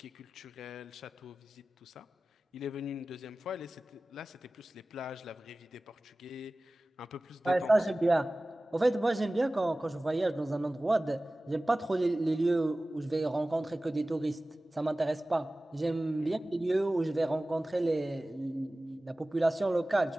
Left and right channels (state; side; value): normal; both; correlation 0.97